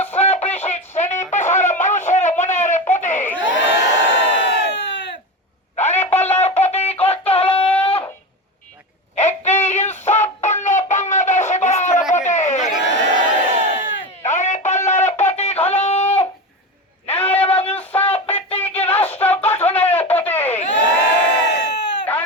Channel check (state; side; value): normal; both; correlation 0.22